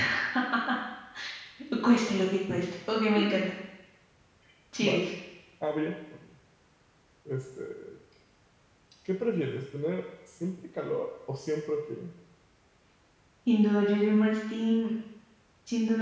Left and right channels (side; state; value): both; identical; correlation 1.00